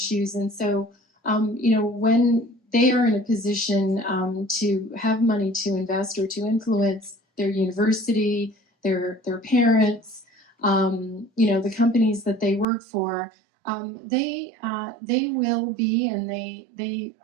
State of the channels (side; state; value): left; drops out; at 12.7 s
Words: And so, when they are in a position to have money to invest or to influence their university, their parents, the companies that they work for, they will be, and they